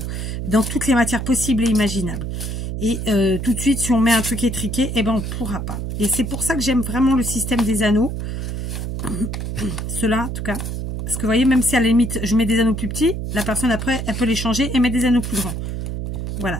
Dans toutes les matières possibles et imaginables. Et tout de suite, si on met un truc étriqué, eh ben on pourra pas. Et c'est pour ça que j'aime vraiment le système des anneaux. Ceux-là, en tout cas. Parce que vous voyez, même si à la limite, je mets des anneaux plus petits, la personne après, elle peut les changer et mettre des anneaux plus grands.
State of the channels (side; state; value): right; noise; hum, 4 dB below the sound